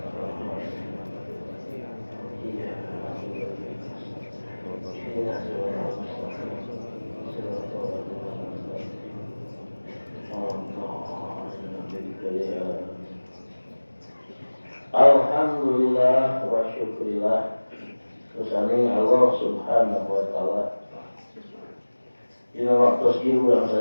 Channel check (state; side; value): inverted; both; correlation -1.00